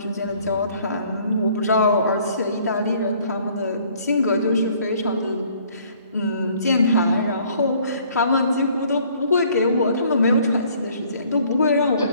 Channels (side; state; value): both; inverted; correlation -0.59